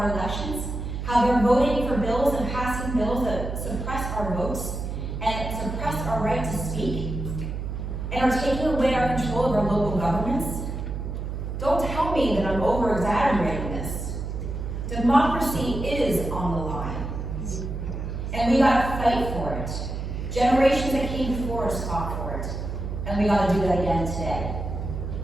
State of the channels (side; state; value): right; noise; hum, 5 dB below the sound